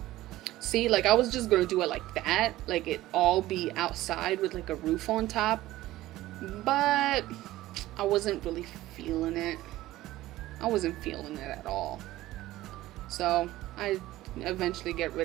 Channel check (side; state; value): left; quieter; 16.2 dB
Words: See, like I was just gonna do it like that, like it all be outside with like a roof on top, but I wasn't really feeling it. I wasn't feeling it at all. So I eventually get